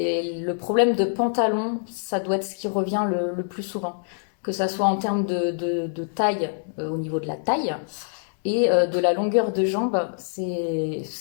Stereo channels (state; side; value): silent; right; digital silence